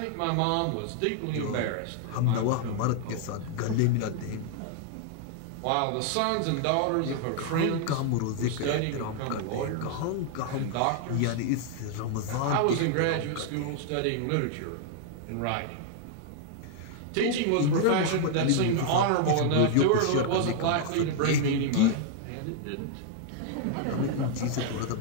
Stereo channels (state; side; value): different; both; correlation 0.00